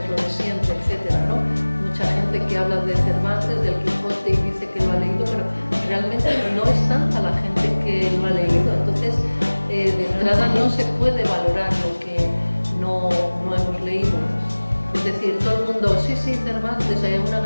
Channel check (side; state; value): both; inverted; correlation -1.00